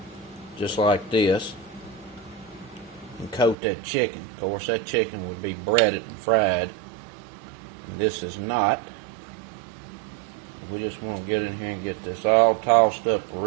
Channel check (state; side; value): drops out; left; at 3.6 s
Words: just like this and coat that chicken. Of course that chicken would be breaded and fried and this is not. We just want to get in here and get this all tossed up